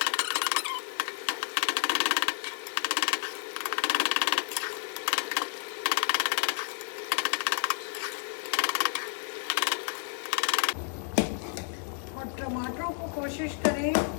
टमाटरों को कोशिश करें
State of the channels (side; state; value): right; silent; 57 dB below the other